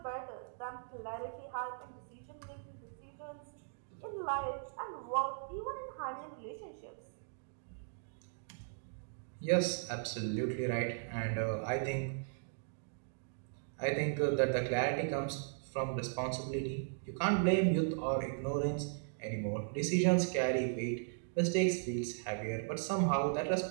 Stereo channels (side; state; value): left; silent; digital silence